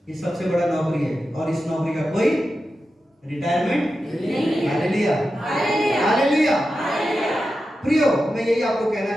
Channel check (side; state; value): both; normal; correlation 0.91